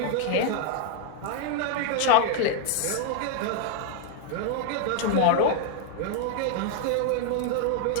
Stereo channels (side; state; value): both; different; correlation 0.00